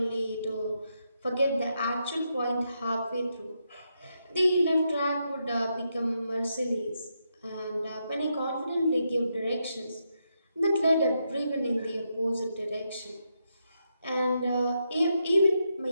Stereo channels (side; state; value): both; inverted; correlation -0.82